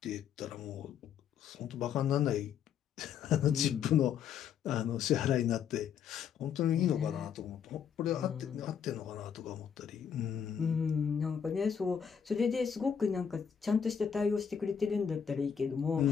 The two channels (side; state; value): right; quieter; 7.7 dB